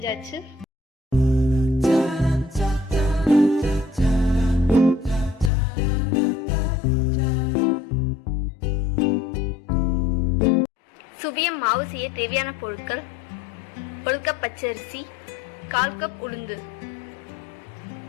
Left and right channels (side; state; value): right; drops out; at 5.5 s